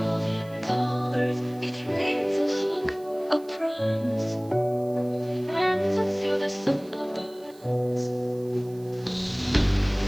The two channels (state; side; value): noise; right; hiss, 26 dB below the sound